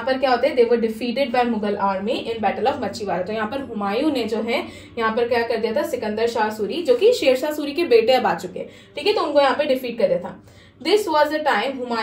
पर क्या होता है, they were defeated by Mughal army in battle of Machhiwara. तो यहाँ पर हुमायूं ने जो है यहाँ पर क्या कर दिया था, सिकंदर शाह सूरी जो कि शेरशाह सूरी के बेटे अब आ चुके, ठीक है, तो उनको यहाँ पे डिफीट कर दिया था। This was the time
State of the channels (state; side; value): identical; both; correlation 1.00